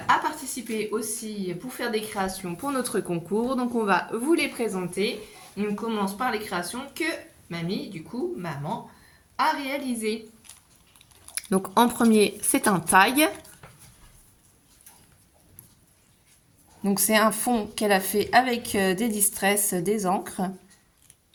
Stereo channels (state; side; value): identical; both; correlation 1.00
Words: participé aussi pour faire des créations pour notre concours. Donc on va vous les présenter. On commence par les créations que mamie, du coup, maman, a réalisées. Donc en premier, c'est un tag. Donc c'est un fond qu'elle a fait avec des distress, des encres.